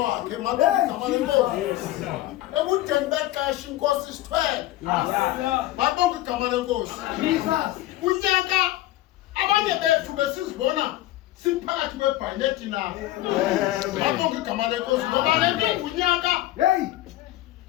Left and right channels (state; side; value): quieter; right; 15.6 dB